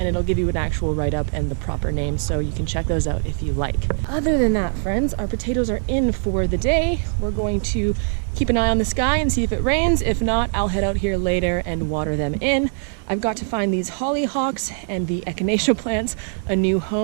it'll give you an actual write-up and the proper name, so you can check those out if you like. Other than that, friends, our potatoes are in for the day. We're going to keep an eye on the sky and see if it rains. If not, I'll head out here later and water them in. I've got to find these hollyhocks and the echinacea plants a new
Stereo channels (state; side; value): silent; left; digital silence